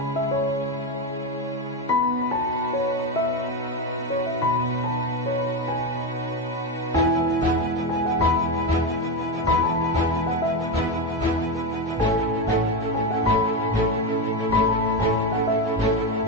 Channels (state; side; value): normal; both; correlation 0.13